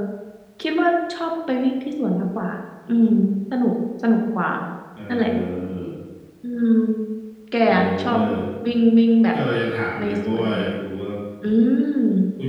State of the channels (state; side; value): identical; both; correlation 1.00